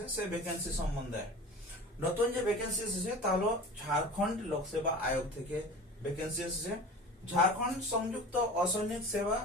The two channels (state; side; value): normal; both; correlation 0.36